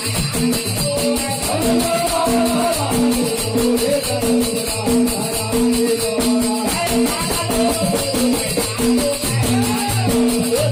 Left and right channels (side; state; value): both; identical; correlation 1.00